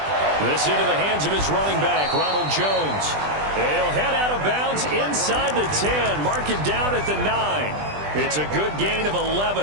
This into the hands of his running back, Ronald Jones. And he'll head out of bounds inside the 10. Mark him down at the 9. It's a good gain of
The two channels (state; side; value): late; left; 20 ms